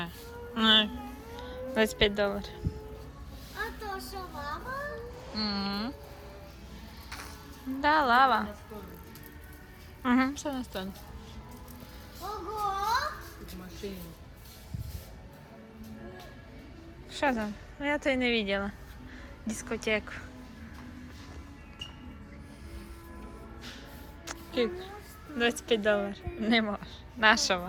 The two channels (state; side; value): identical; both; correlation 1.00